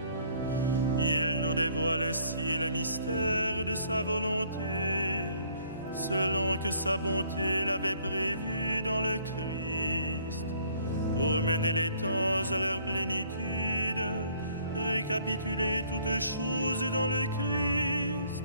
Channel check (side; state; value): both; inverted; correlation -0.61